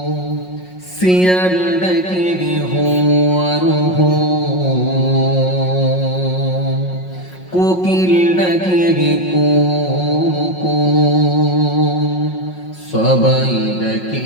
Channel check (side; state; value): right; late; 5.5 ms